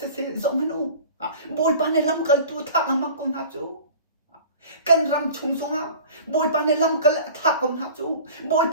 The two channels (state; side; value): inverted; both; correlation -0.41